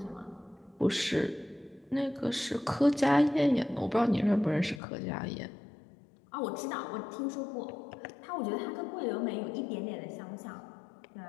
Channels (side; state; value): right; drops out; at 4.8 s